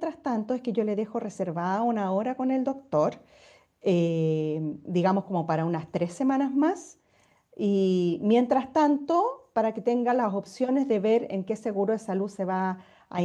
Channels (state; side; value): identical; both; correlation 1.00